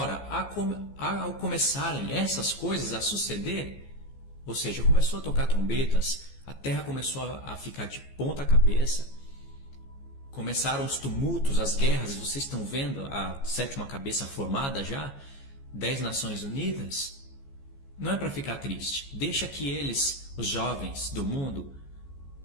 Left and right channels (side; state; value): right; late; 14 ms